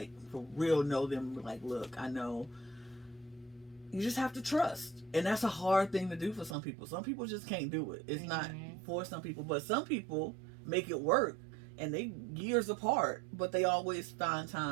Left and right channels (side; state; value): left; drops out; at 6.6 s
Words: for real, know them. Like, look, I know. You just have to trust, and that's a hard thing to do for some people. Some people just can't do it. It's not for some people, but some people make it work. And they years apart, but they always find